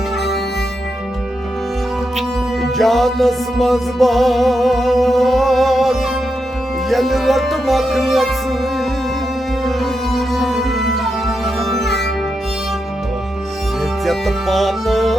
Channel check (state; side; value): normal; both; correlation 0.85